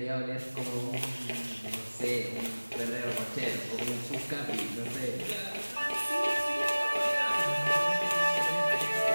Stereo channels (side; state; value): both; inverted; correlation -1.00